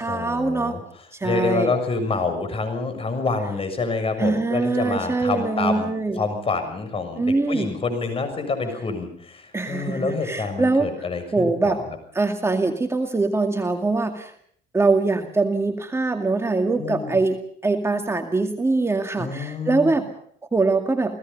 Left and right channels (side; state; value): both; normal; correlation 0.75